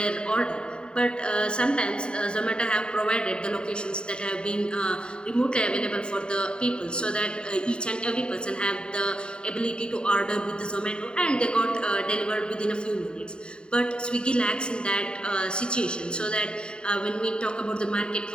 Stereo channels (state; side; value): late; right; 0.050 ms